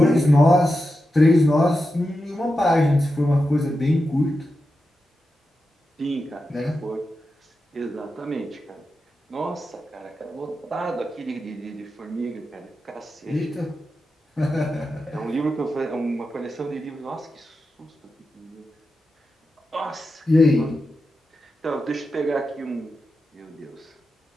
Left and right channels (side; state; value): both; normal; correlation 0.90